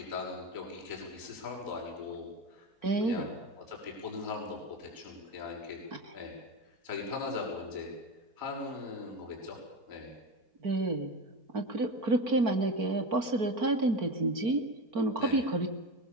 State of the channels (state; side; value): late; left; 4.5 ms